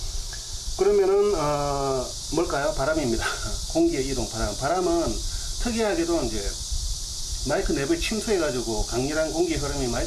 그러면은 뭘까요? 바람입니다. 공기의 이동, 바람은 특이하게도 이제 마이크 내부에 침투해 가지고 강렬한 공기의 흐름이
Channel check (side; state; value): both; identical; correlation 1.00